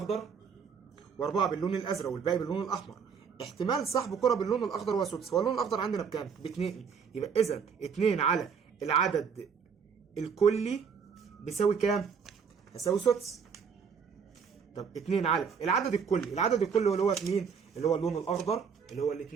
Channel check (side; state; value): left; quieter; 6.4 dB